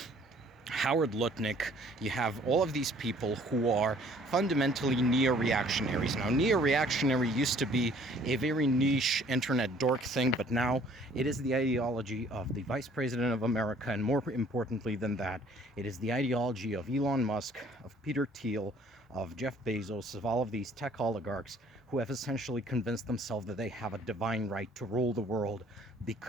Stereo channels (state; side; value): normal; both; correlation 0.57